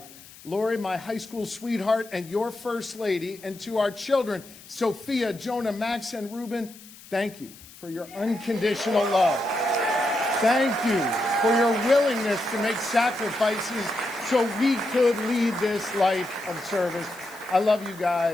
Lori, my high school sweetheart, and your first lady, and to our children, Sophia, Jonah, Max, and Ruben, thank you for your unconditional love. Thank you for your willingness to make sacrifices so we could lead this life of service. I love you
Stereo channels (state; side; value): noise; left; hiss, 20 dB below the sound